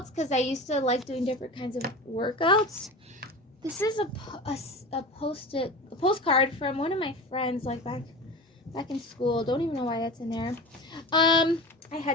because I used to like doing different kinds of workouts. This is a postcard from one of my friends, like back in school. Don't even know why that's in there. I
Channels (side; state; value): both; normal; correlation 0.31